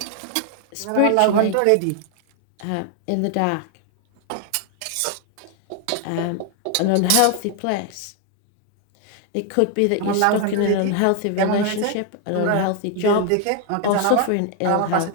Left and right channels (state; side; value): different; both; correlation 0.00